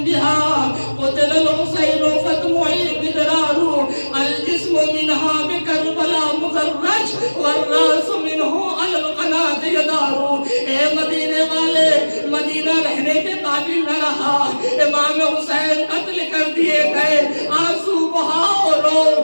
بہا قتل الحسین فتمعی بدرار الجسم منہا بکربلا مزرج والراس منہ علی القناة یدار۔ اے مدینے والے، مدینہ رہنے کے قابل نہ رہا، امام حسین قتل کر دیے گئے، آنسو بہاؤ رو،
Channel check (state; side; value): inverted; both; correlation -1.00